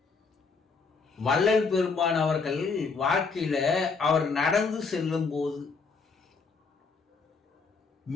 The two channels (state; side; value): quieter; right; 4.7 dB